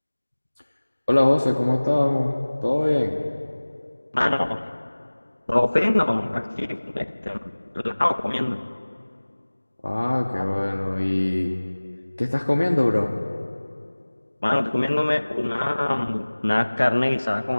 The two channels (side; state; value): both; inverted; correlation -1.00